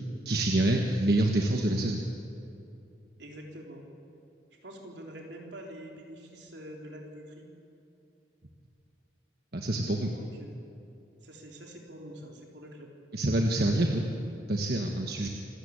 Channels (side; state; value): both; normal; correlation 0.75